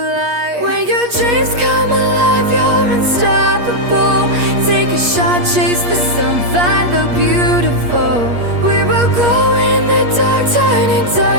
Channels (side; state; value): left; late; 8.4 ms